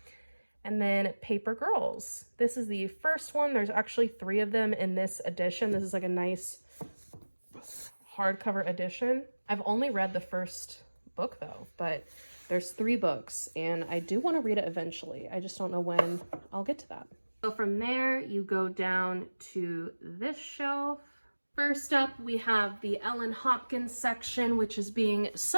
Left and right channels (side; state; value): both; inverted; correlation -1.00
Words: And then Paper Girls. This is the first one. There's actually 3 of them in this edition. This is like a nice hardcover edition. I've only read the first book though, but there's 3 books, and I do want to read it eventually. I just don't know when I'll get to that. So from there, you go down to this shelf. First up, we have the Ellen Hopkins section, which is being